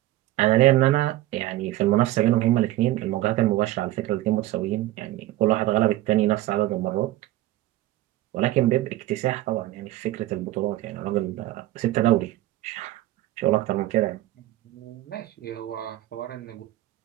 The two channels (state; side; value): quieter; left; 15.8 dB